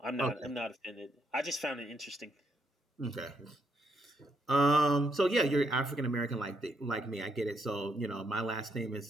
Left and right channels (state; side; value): normal; both; correlation 0.76